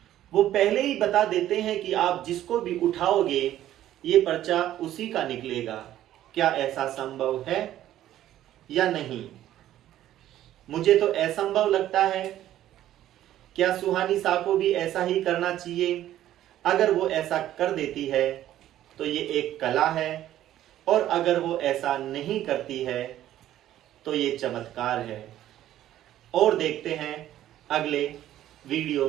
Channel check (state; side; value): quieter; left; 12.8 dB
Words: वो पहले ही बता देते हैं कि आप जिसको भी उठाओगे ये पर्चा उसी का निकलेगा। क्या ऐसा संभव है या नहीं? मुझे तो असंभव लगता है। क्या सुहानी शाह को भी ऐसा ही करना चाहिए? अगर वो ऐसा कर देती है तो ये एक कला है, और अगर वो ऐसा नहीं करती है तो ये चमत्कार है। और देखते हैं अगले